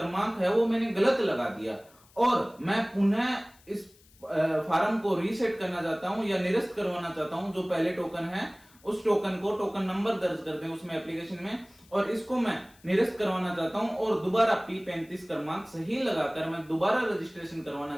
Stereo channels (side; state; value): left; noise; hiss, 28 dB below the sound